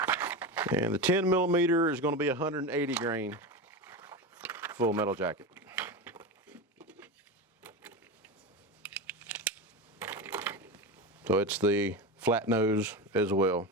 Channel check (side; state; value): both; normal; correlation 0.20